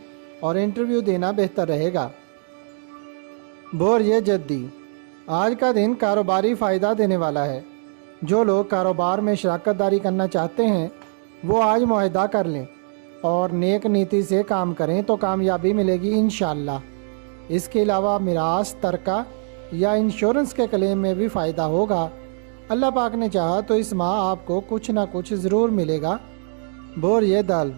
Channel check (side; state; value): left; silent; digital silence